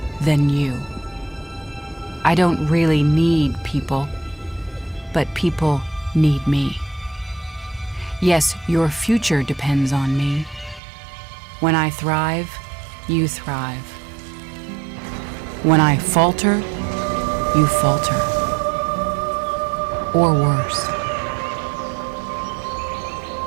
than you. I don't really need people, but people need me. Yes, your future depends on me. When I thrive, you thrive. When I falter, you falter. Or worse.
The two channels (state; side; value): drops out; left; at 10.8 s